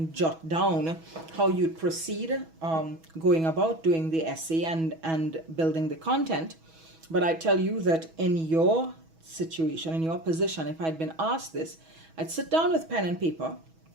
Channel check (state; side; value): late; left; 6.2 ms